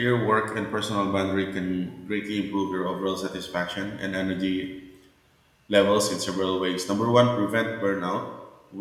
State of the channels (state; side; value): identical; both; correlation 1.00